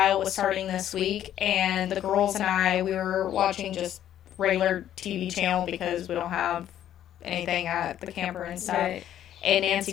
was starting this week, and the girls and we were watching just regular TV channel because we don't have anything at the camper and stuff. Right. And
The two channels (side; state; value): right; quieter; 11.2 dB